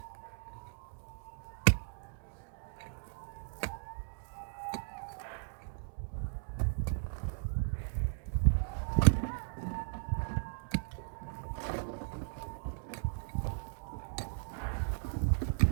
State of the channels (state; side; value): silent; left; digital silence